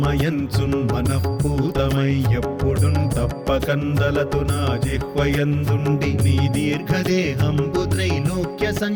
మనఃపూతమై ఎప్పుడున్ తప్పకందలతు నా జిహ్వయందుండి నీ దీర్ఘదేహంబు త్రైలోక్య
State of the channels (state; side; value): identical; both; correlation 1.00